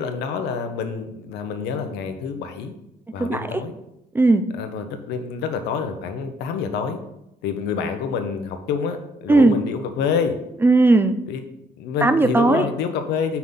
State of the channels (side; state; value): both; normal; correlation 0.67